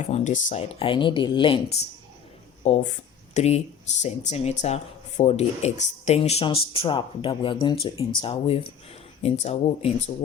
on this side. I need a length of 3 centimeter for the extension strap that we are going to interweave into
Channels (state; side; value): quieter; right; 8.0 dB